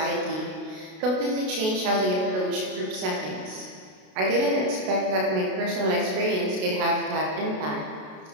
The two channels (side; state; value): left; late; 32 ms